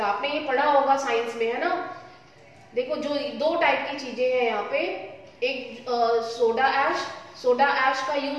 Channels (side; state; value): both; identical; correlation 1.00